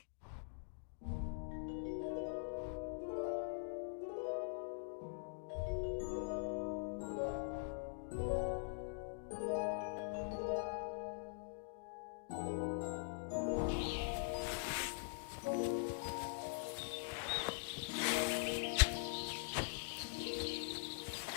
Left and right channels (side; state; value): right; silent; digital silence